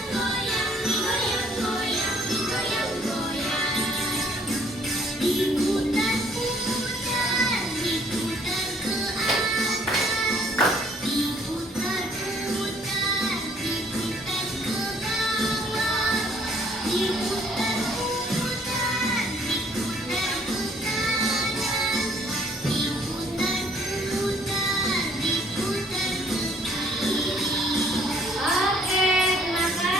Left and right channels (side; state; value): both; normal; correlation 0.62